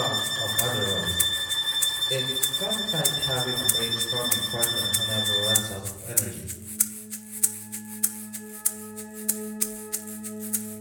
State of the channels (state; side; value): identical; both; correlation 1.00